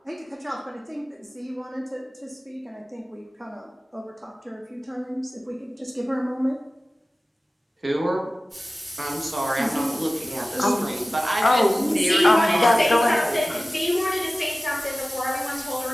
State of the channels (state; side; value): normal; both; correlation 0.96